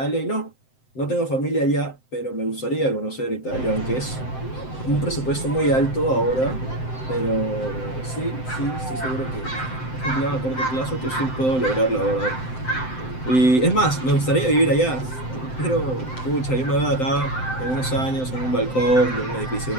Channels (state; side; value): late; right; 7.8 ms